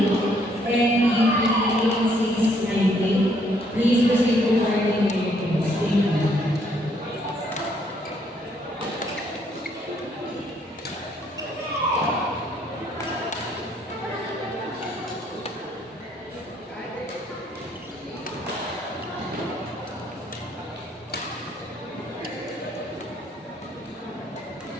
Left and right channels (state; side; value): normal; both; correlation 0.68